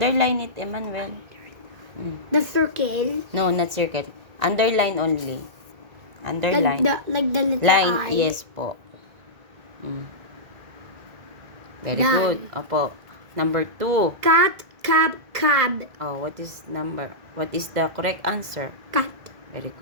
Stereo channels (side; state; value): left; late; 1.9 ms